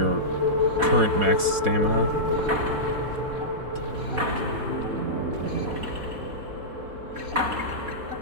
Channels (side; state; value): left; late; 4.1 ms